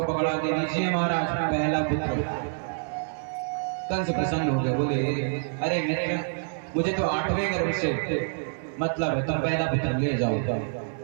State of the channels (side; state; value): left; silent; digital silence